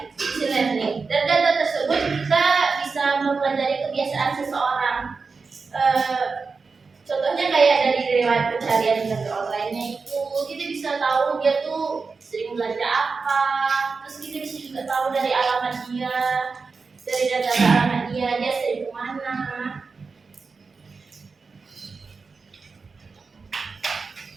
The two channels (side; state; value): left; quieter; 4.6 dB